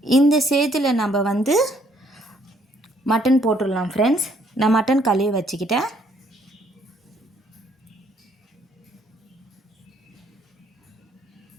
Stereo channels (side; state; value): both; normal; correlation 0.67